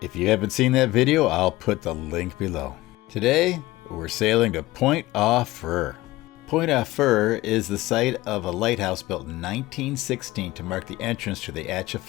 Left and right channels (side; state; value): right; quieter; 18.4 dB